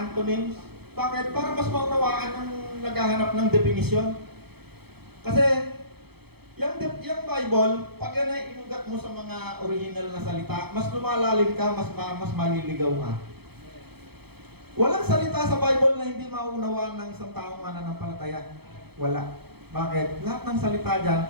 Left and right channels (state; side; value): late; left; 0.97 ms